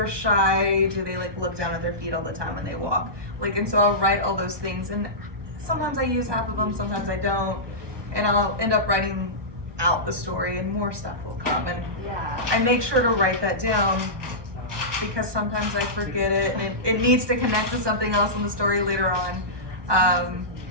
shy, do they like look down at their feet all the time when they walk? Like, and so I'll write all those things, and sometimes I use half of them, sometimes I don't, and I'll end up writing out the story, and more stuff will come, and I make sure to write that down because sometimes I forget it, and it needs to connect to something else in the story later on.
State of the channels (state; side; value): late; left; 1.2 ms